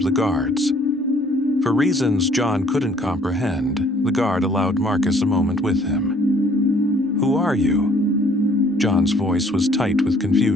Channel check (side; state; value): both; normal; correlation 0.60